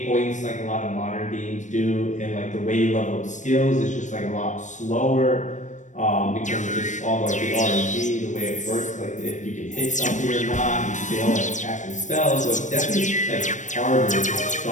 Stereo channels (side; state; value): right; late; 0.35 ms